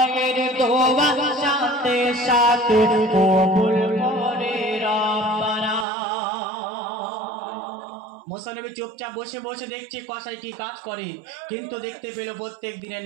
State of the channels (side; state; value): left; drops out; at 5.9 s